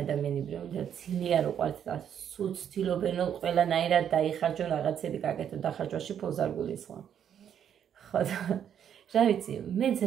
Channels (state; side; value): quieter; left; 9.0 dB